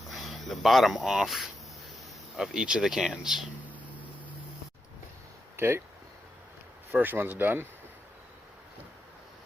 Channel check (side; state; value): both; normal; correlation 0.86